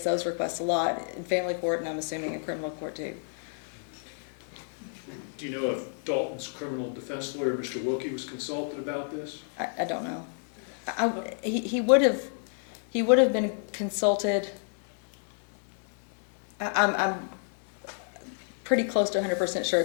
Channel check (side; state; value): right; silent; 58 dB below the other